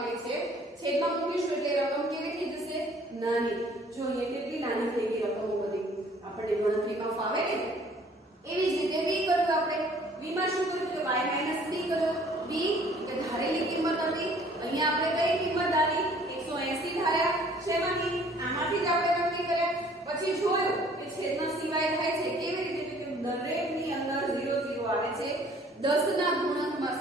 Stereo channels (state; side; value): normal; both; correlation 0.56